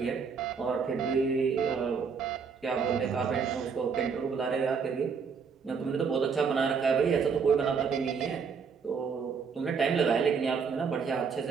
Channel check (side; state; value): left; quieter; 5.9 dB